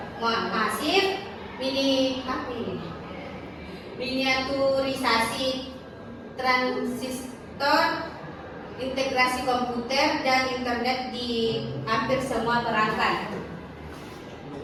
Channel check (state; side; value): identical; both; correlation 1.00